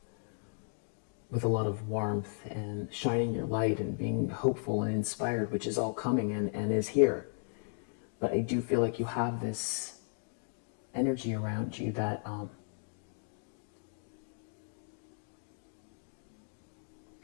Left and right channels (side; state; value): right; silent; digital silence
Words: with a lot of warmth, and shining your light, and being hopeful and inspired, which is all coming and is here. But I do feel like you have this energy around you that